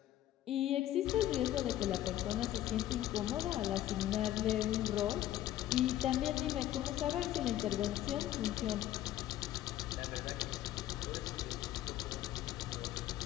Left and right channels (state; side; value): quieter; right; 13.3 dB